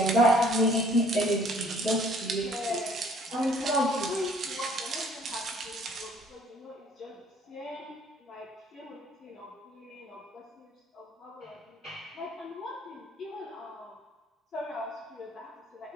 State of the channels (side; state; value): both; normal; correlation 0.58